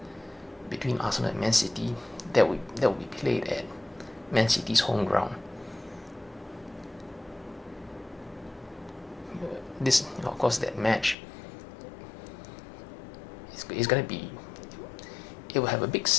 between Arsenal and Man City that will be played at Man City's home ground. This, of course, that match is going to be. It will have a big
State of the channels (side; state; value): right; drops out; at 11.2 s